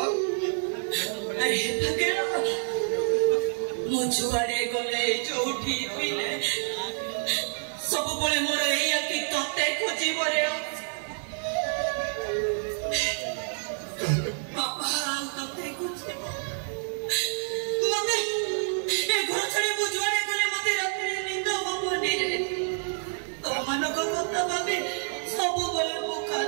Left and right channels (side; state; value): left; silent; 59 dB below the other